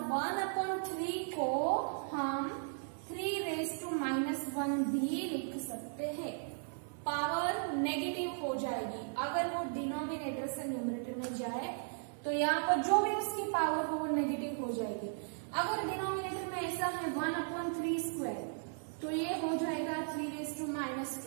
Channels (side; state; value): left; silent; digital silence